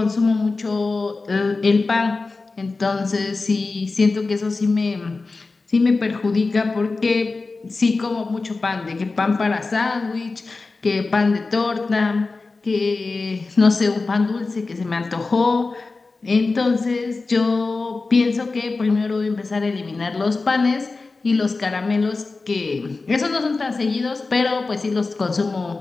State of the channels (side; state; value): right; quieter; 3.8 dB